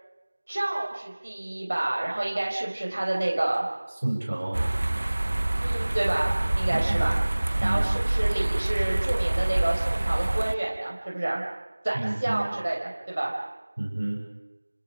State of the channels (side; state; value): both; inverted; correlation -1.00